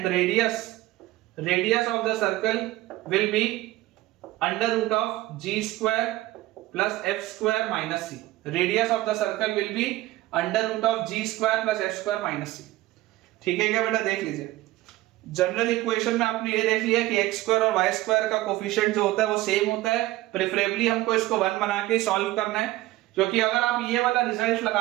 radius of the circle will be under root of g square plus f square minus c, radius of the circle will be under root of g square plus f square minus c। ठीक है क्या बेटा, देख लीजिए general equation में आपने ये देख लिया कि x स्क्वायर और y स्क्वायर का कोफिशिएंट जो होता है वो सेम होता है। प्रेफरेबली हमको इसको 1 बना के सॉल्व करना है, क्योंकि अगर आप ये वाला रिजल्ट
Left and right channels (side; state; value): left; quieter; 17.4 dB